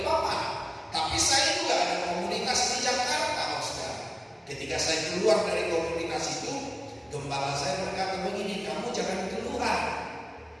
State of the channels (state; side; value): identical; both; correlation 1.00